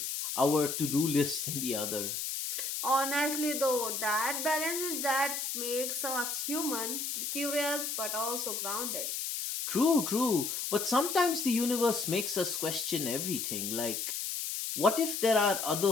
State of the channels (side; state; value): left; noise; hiss, 3 dB below the sound